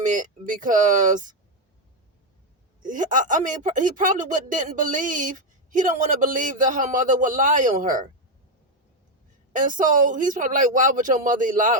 because, I mean, he probably didn't believe, he don't want to believe that her mother would lie on her. And so he's probably like, why would your mother lie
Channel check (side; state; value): both; normal; correlation 0.05